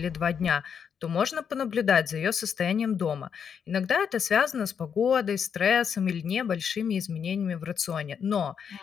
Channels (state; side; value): quieter; right; 7.2 dB